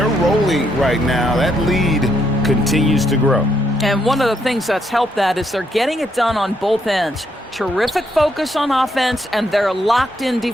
rolling right now. That lead continues to grow. And one of the things that's helped that is they're getting it done on both ends. Terrific focus on offense, and they're locked in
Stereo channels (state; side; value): normal; both; correlation 0.75